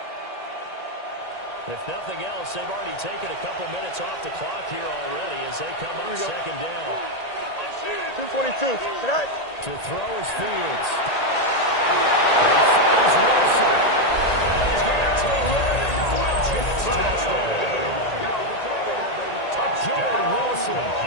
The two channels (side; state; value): right; late; 1.8 ms